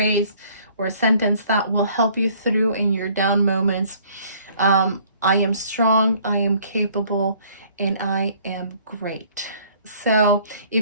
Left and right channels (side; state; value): both; inverted; correlation -0.58